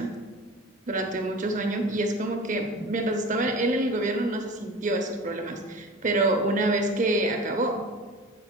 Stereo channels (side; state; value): both; normal; correlation 0.37